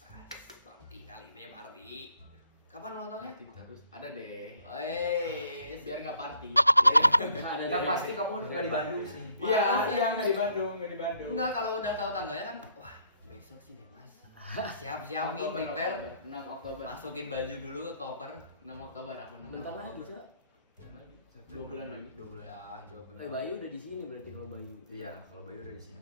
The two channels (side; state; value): both; inverted; correlation -0.65